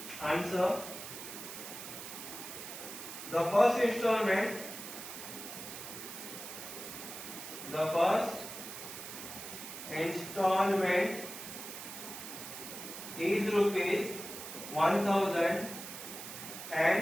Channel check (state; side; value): noise; right; hiss, 10 dB below the sound